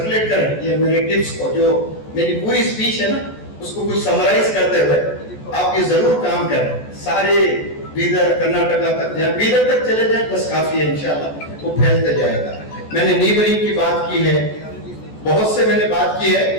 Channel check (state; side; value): late; right; 14 ms